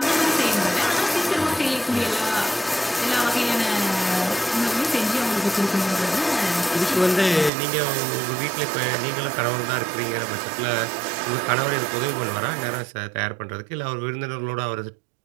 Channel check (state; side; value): drops out; left; at 7.5 s